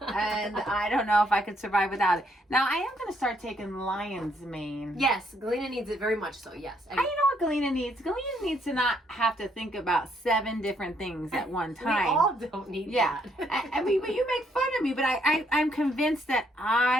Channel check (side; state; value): both; normal; correlation 0.72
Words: I don't know if I could survive without it. Now I am going to start taking lion's mane. Yes, Galena needs it very much so, yes. You know what Galena needs? Galena needs to not have to think about 7 different things at one time. We all don't need that. I mean, but you make fun of me, but I'm convinced that